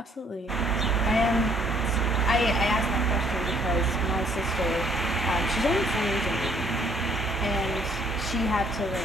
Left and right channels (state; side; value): normal; both; correlation 0.64